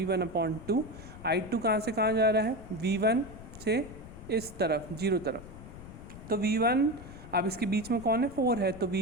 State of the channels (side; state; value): left; noise; rumble, 15 dB below the sound